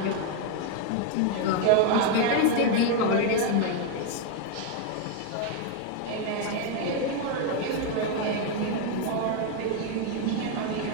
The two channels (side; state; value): both; different; correlation 0.01